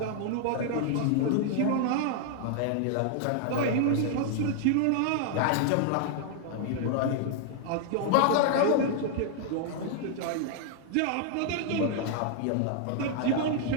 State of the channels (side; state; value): both; different; correlation -0.01